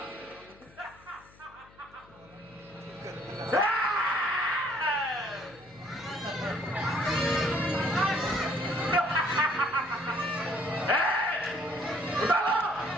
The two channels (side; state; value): left; noise; hum, 26 dB below the sound